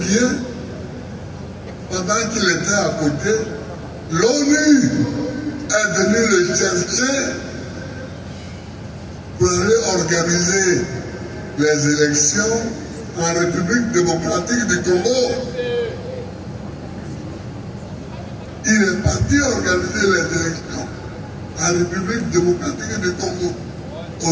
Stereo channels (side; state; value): both; identical; correlation 1.00